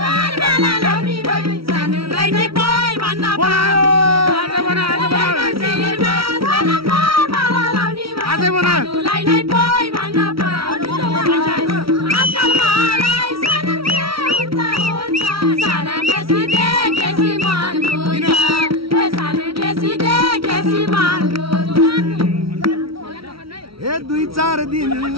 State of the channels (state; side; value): late; left; 0.75 ms